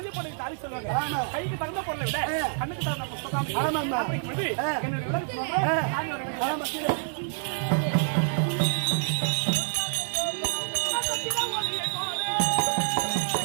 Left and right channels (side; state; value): left; silent; 60 dB below the other